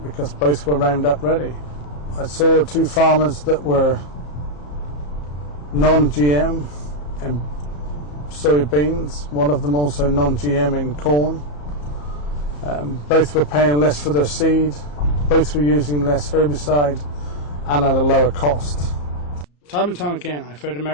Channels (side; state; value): right; late; 34 ms